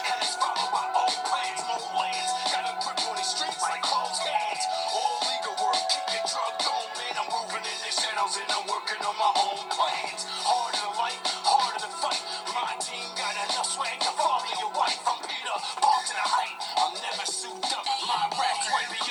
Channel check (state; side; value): identical; both; correlation 1.00